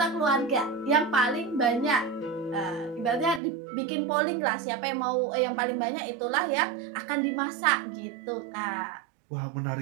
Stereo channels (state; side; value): drops out; left; at 3.4 s